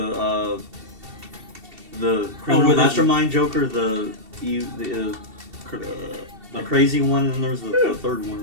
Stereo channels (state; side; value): late; left; 2.7 ms